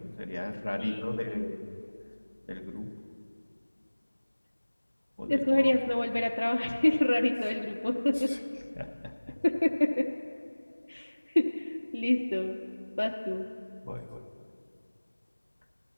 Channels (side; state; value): both; inverted; correlation -1.00